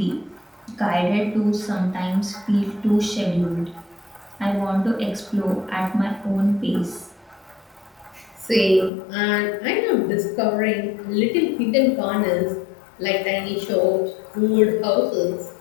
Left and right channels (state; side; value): drops out; right; at 8.9 s